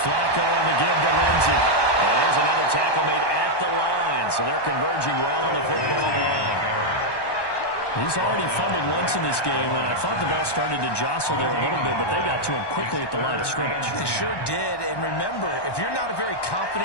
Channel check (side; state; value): right; late; 1.1 ms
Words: Flacco on the give to Lindsey. Well, there's another tackle made at the line. So they're converging well on the football now. He's already fumbled once in this game, and I thought the ball started to jostle there a little bit, but they got to him quickly at the line of scrimmage. They sure did, and remember, if you're not a very